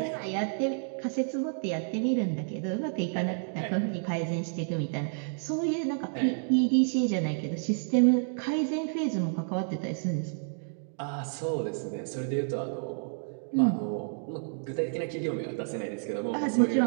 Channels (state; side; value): silent; left; digital silence